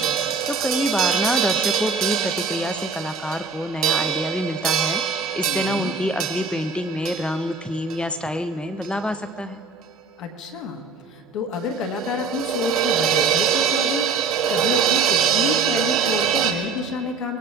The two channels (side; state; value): left; quieter; 4.1 dB